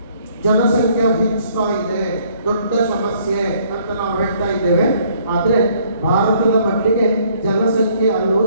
ಜನಸಂಖ್ಯೆ ಹೆಚ್ಚುತ್ತಾ ಇದೆ, ದೊಡ್ಡ ಸಮಸ್ಯೆ ಅಂತ ನಾವು ಹೇಳ್ತಾ ಇದ್ದೇವೆ. ಆದರೆ ಭಾರತದ ಮಟ್ಟಿಗೆ ಜನಸಂಖ್ಯೆ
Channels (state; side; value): inverted; both; correlation -0.63